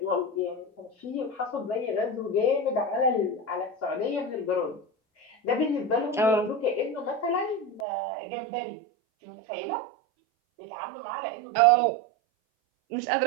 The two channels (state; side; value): drops out; left; at 7.9 s